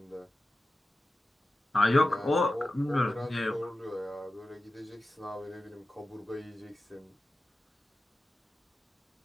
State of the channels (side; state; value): both; normal; correlation 0.94